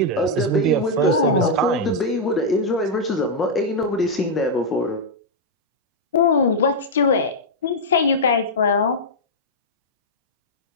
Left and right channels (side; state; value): both; normal; correlation -0.04